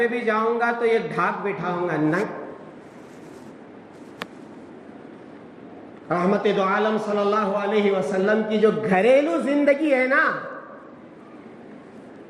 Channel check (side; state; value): both; identical; correlation 1.00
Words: بھی جاؤں گا تو ایک ڈھاک بٹھاؤں گا. نہیں, رحمت دو عالم صلی اللہ علیہ وسلم کی جو گھریلو زندگی ہے نا,